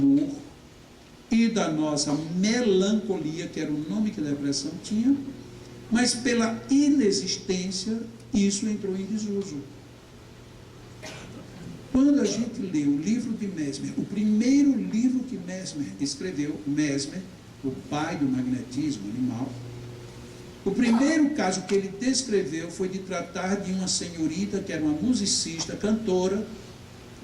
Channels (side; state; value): both; identical; correlation 1.00